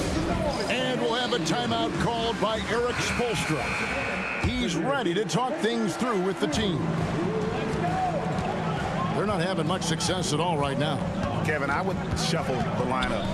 And we'll have a timeout called by Eric Spoelstra. He's ready to talk things through with the team. They're not having much success at all right now. Kevin, I would shuffle the lineup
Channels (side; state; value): both; identical; correlation 1.00